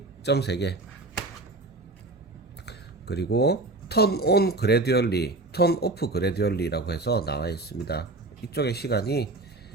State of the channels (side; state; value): left; quieter; 3.1 dB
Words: 점 3개. 그리고 턴 온 그래듀얼리, 턴 오프 그래듀얼리라고 해서 나와 있습니다. 이쪽에 시간이